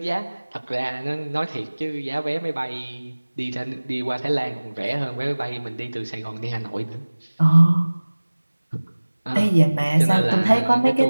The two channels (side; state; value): both; inverted; correlation -1.00